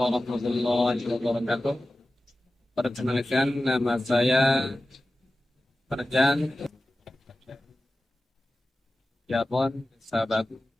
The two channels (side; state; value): both; normal; correlation 0.95